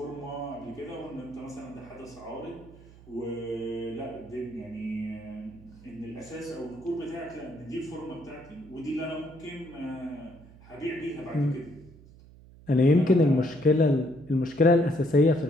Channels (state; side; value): noise; right; hum, 22 dB below the sound